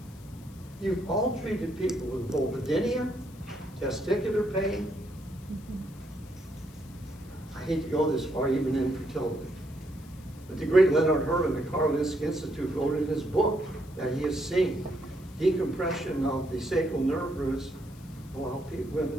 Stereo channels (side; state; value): left; noise; hiss, 24 dB below the sound